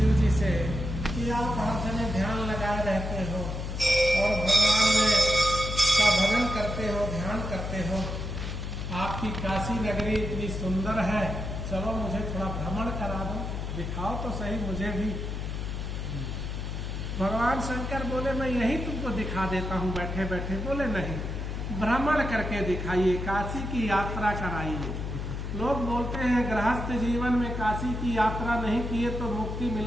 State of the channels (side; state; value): left; noise; hum, 4 dB below the sound